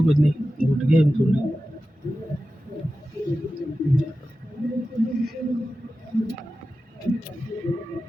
कुछ नहीं घुट गया हम थोड़ी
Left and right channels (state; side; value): normal; both; correlation 0.93